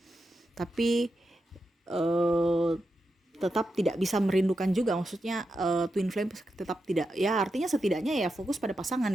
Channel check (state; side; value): normal; both; correlation 0.88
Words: tapi tetap tidak bisa merindukan juga, maksudnya twin flame tetap tidak, ya artinya setidaknya ya fokus pada pasangan